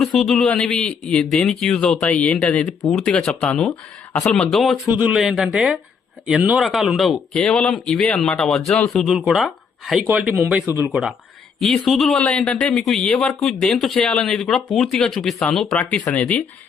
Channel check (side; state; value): right; quieter; 6.1 dB